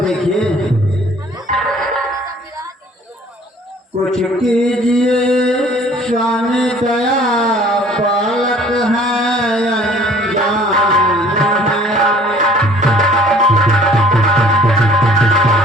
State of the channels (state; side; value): normal; both; correlation 0.53